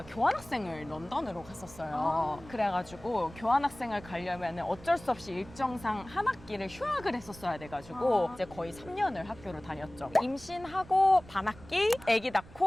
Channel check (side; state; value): right; noise; rumble, 19 dB below the sound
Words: 교환학생을 런던으로 갔었어요. 그래가지고 교환학생을 가려면 어쩔 수 없이 일정상 한 학기를 휴학을 했었어야 돼가지고 이제 거의 3년을 학교를 다녔죠. 임신하고 반학기, 아기